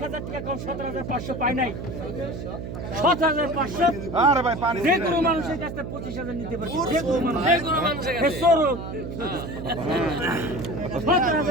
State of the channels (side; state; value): right; noise; hum, 7 dB below the sound